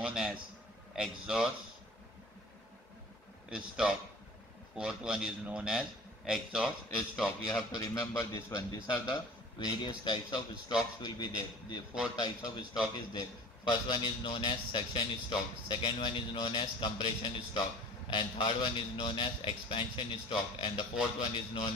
as exhaust stroke. Fourth one is known as exhaust stroke. You have to remember this one. These are the various types of strokes will be there. The 4 types of stroke is there. First one is known as section stroke. Second one is known as compression stroke. And third one is known as expansion stroke. And the fourth one is known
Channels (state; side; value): normal; both; correlation 0.43